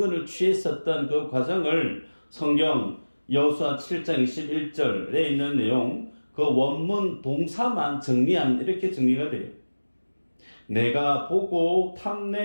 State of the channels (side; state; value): both; inverted; correlation -1.00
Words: 취했었던 그 과정을 성경 여호수아 7장 21절에 있는 내용 그 원문 동사만 정리하면 이렇게 정리가 돼요. 내가 보고